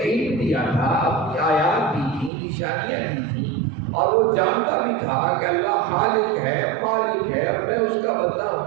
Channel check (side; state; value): left; drops out; at 2.3 s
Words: دیا تھا، اپنی آیات دی تھی، نشانیاں دی تھیں، اور وہ جانتا بھی تھا کہ اللہ خالق ہے، مالک ہے، اور میں اس کا بندہ